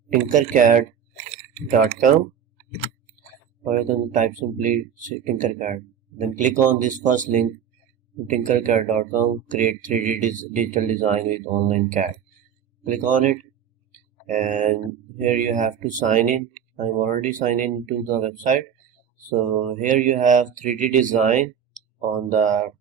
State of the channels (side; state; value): left; quieter; 8.3 dB